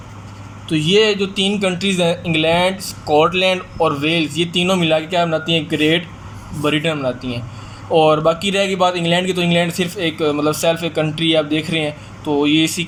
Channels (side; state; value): both; identical; correlation 1.00